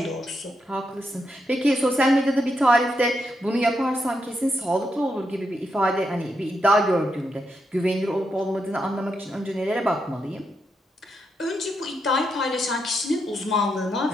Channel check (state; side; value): normal; both; correlation 0.82